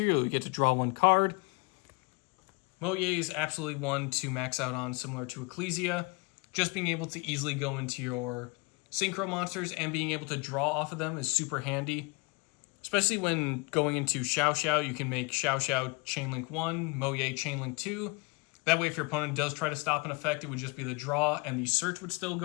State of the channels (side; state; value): right; quieter; 28.9 dB